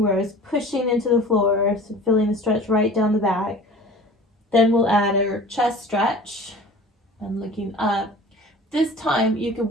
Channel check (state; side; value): normal; both; correlation 0.42